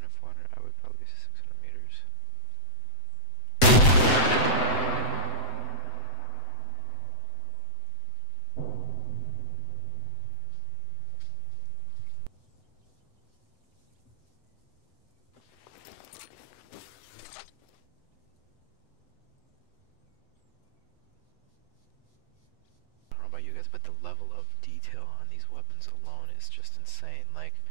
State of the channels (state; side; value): late; right; 7.9 ms